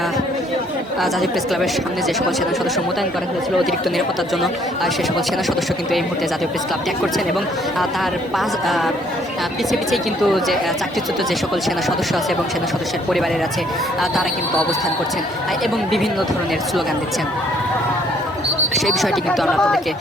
জাতীয় প্রেস ক্লাবের সামনে যে সকল সেনা সদস্য মোতায়েন করা হয়েছিল অতিরিক্ত নিরাপত্তার জন্য সে সকল সেনা সদস্য কিন্তু এই মুহূর্তে জাতীয় প্রেস ক্লাব ত্যাগ করছেন এবং তার পিছিয়ে কিন্তু যে চাকরিচ্যুত যে সকল সেনা সদস্য আছে এবং সেনা সদস্যের পরিবারের আছে তারা কিন্তু অবস্থান করছেন এবং বিভিন্ন ধরনের স্লোগান দিচ্ছেন। সেই বিষয়টি কিন্তু আমরা আপনাদেরকে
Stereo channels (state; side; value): normal; both; correlation 0.64